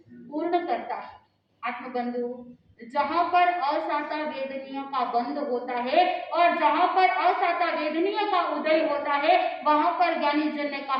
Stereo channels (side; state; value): both; identical; correlation 1.00